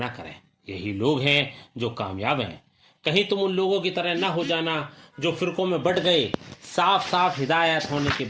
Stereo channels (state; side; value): identical; both; correlation 1.00